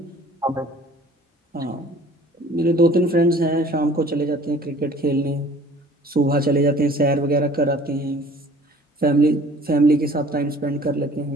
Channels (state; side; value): normal; both; correlation 0.50